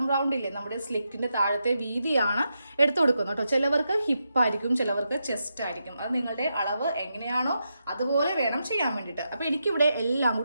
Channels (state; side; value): inverted; both; correlation -0.85